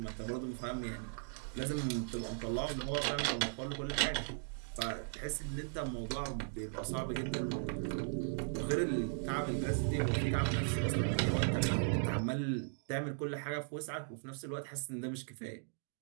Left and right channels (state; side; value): silent; left; digital silence